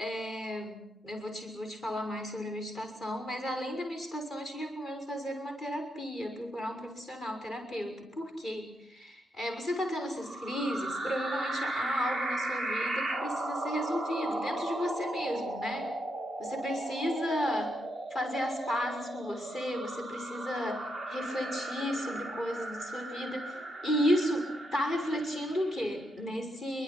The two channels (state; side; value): normal; both; correlation 0.81